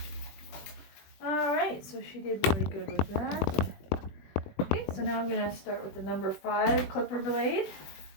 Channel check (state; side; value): late; right; 21 ms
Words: Alright, so she did really good with that. Okay, so now I'm going to start with the number 5 clipper blade.